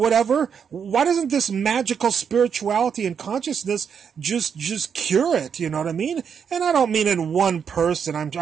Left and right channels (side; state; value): left; quieter; 7.1 dB